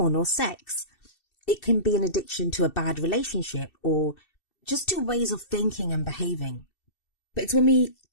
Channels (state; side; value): late; right; 2.7 ms